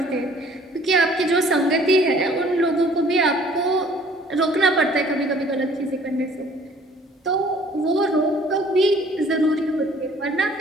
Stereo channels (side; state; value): both; normal; correlation 0.55